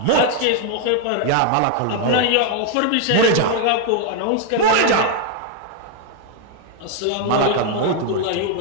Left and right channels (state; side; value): different; both; correlation 0.00